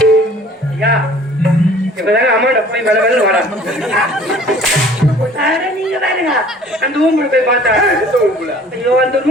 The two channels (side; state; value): both; normal; correlation 0.51